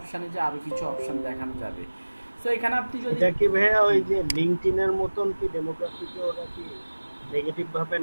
যে আরও কিছু অপশান দেখানো যাবে। তো এখানে আপনি যদি এটা কি ভাইয়া ওই যে লিঙ্কডইনের মতন কি ডেমোগ্রাফিকে ওরা কি নেগেটিভ ভাবে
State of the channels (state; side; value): inverted; both; correlation -1.00